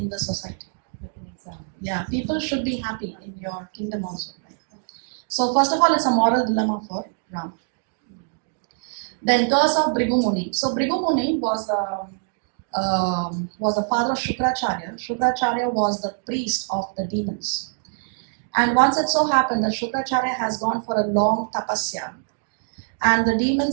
the society. Like an example. Yeah, people should be happy in your kingdom also. Right? So first of all, it's a moral dilemma for Ram. Then curse of Bhrigu Muni. So Bhrigu Muni was was the father of Shukracharya. Shukracharya was the priest of the demons. And once it so happened that Shukracharya has gone for a long tapasya, and the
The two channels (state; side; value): silent; left; digital silence